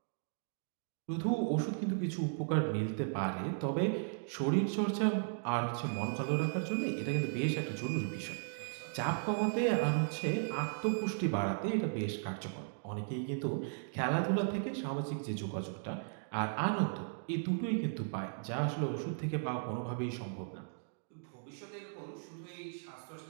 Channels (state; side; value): silent; left; digital silence